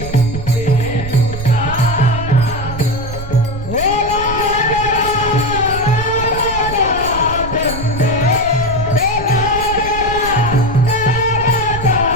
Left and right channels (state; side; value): noise; right; rumble, 10 dB below the sound